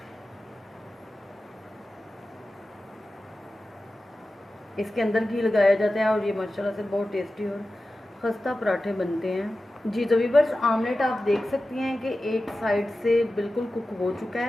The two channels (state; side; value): normal; both; correlation 0.94